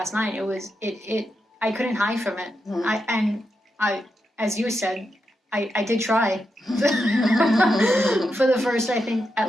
night, it I couldn't hide from it. Mm-hmm. I, as you said, I did try for the first, I think,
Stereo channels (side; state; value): both; normal; correlation 0.86